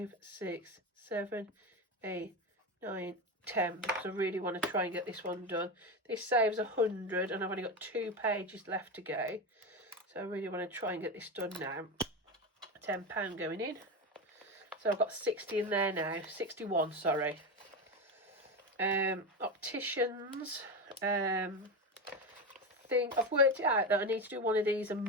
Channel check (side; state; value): both; normal; correlation 0.18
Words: 6, 7, 8, 9, 10. Because I really want to try and get this one done. This saves 100 and I've only got 2 pages left to go. So I really want to try and get this done now. £10 going in. So I've got 60 in there now. 61, sorry. Opticians. I've worked it out that I need to do one of these a